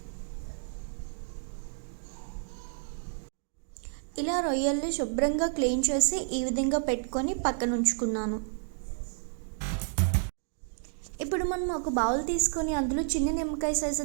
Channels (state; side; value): silent; left; digital silence